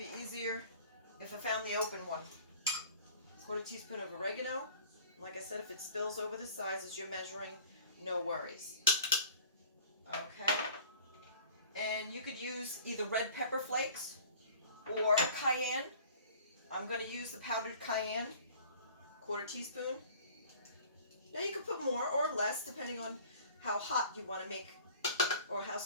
easier if I found the open one. Quarter teaspoon of oregano. Like I said, if it spills over the sides as you're measuring, no worries. Okay. And you could use either red pepper flakes or cayenne. I'm going to use the powdered cayenne, quarter teaspoon. Now you can put more or less depending on how hot you want to make or how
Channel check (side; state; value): both; inverted; correlation -0.46